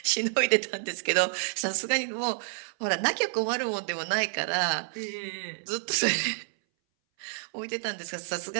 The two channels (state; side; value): silent; left; 59 dB below the other